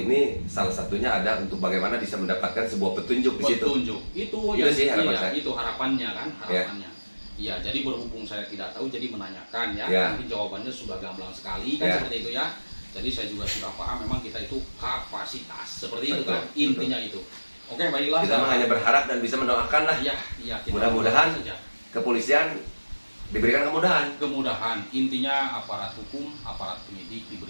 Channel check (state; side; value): inverted; both; correlation -1.00